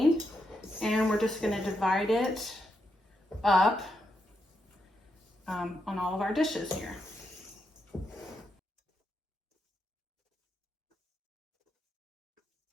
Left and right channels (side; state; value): both; normal; correlation 0.82